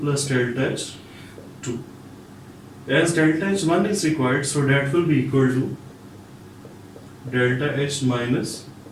delta H2. As delta H1 is required, so that will be equal to delta H minus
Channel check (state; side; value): identical; both; correlation 1.00